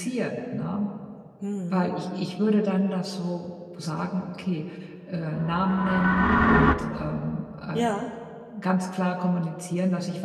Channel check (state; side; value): identical; both; correlation 1.00